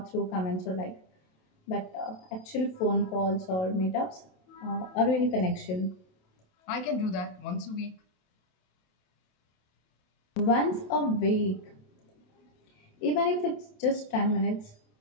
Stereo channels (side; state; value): right; late; 27 ms